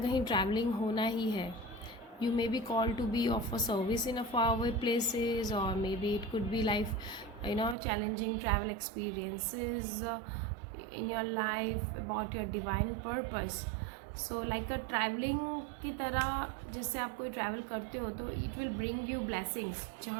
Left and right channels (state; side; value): drops out; left; at 7.8 s